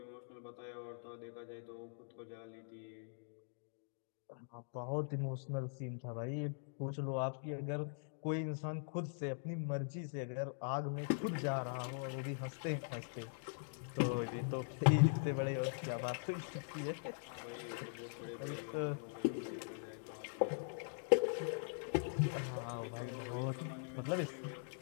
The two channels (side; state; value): right; silent; digital silence